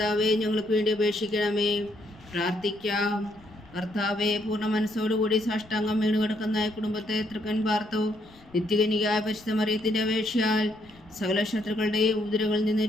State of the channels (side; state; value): left; noise; rumble, 25 dB below the sound